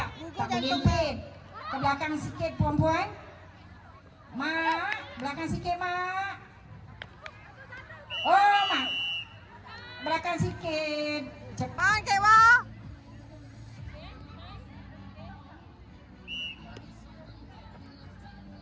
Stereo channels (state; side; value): identical; both; correlation 1.00